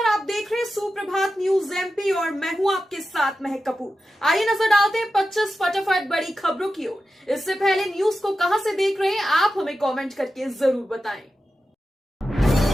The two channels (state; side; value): normal; both; correlation 0.91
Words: आप देख रहे हैं सुप्रभात न्यूज एमपी और मैं हूं आपके साथ महक कपूर। आइए नजर डालते हैं 25 फटाफट बड़ी खबरों की ओर। इससे पहले न्यूज को कहां से देख रहे हैं आप हमें कमेंट करके जरूर बताएं।